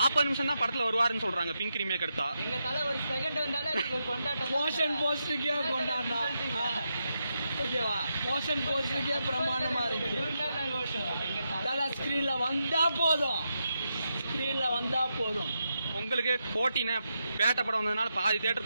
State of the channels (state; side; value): inverted; both; correlation -0.85